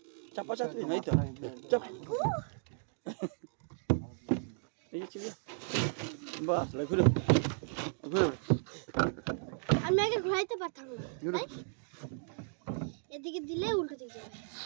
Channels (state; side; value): silent; left; digital silence